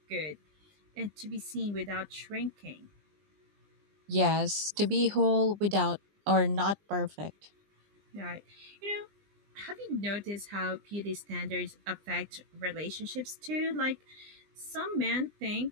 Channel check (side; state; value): left; late; 20 ms